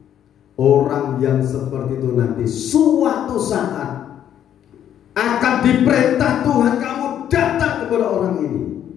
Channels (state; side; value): quieter; right; 10.2 dB